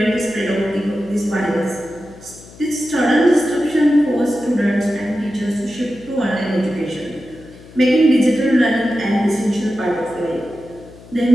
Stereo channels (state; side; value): noise; left; hum, 21 dB below the sound